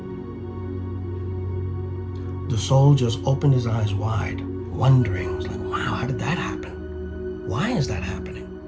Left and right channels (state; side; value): identical; both; correlation 1.00